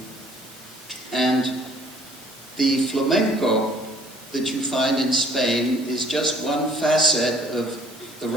And the flamenco that you find in Spain is just one facet of the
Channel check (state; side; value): normal; both; correlation 0.57